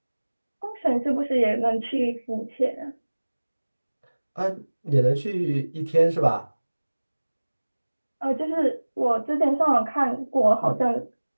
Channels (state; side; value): inverted; both; correlation -1.00